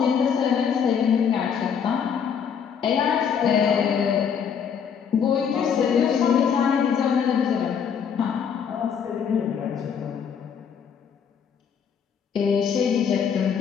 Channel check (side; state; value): right; quieter; 7.3 dB